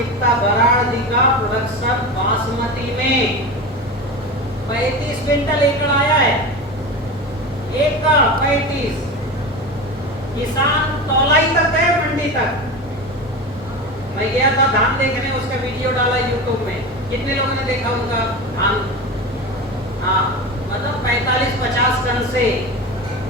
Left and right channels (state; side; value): normal; both; correlation 0.26